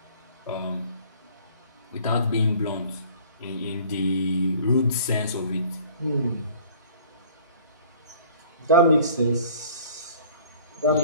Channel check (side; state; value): both; inverted; correlation -0.51